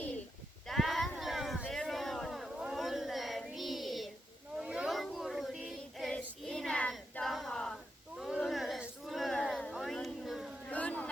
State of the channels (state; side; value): normal; both; correlation 0.85